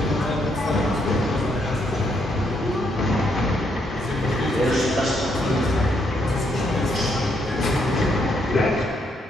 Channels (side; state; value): both; normal; correlation 0.75